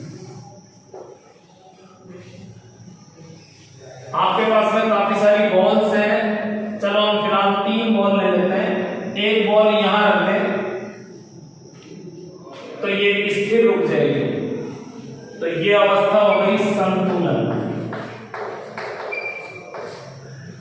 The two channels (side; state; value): both; identical; correlation 1.00